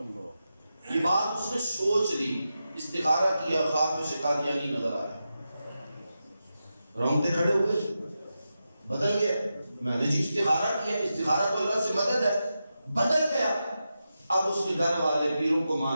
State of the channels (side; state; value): both; inverted; correlation -0.90